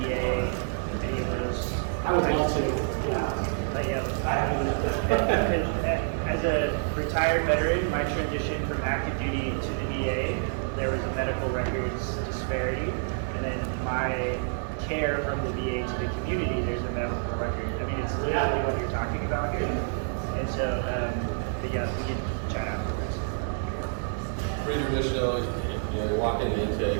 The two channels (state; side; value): silent; left; digital silence